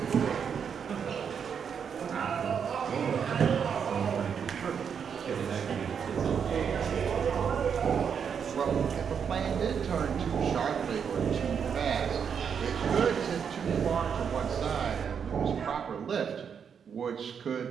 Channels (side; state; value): left; quieter; 7.1 dB